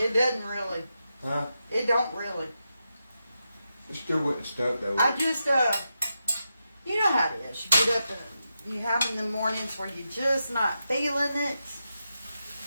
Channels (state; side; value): inverted; both; correlation -0.87